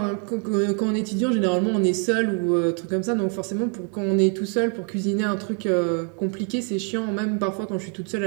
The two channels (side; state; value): left; quieter; 39.8 dB